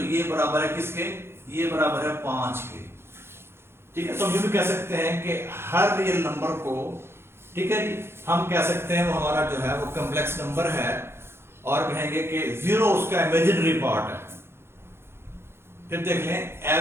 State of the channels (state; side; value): late; left; 0.12 ms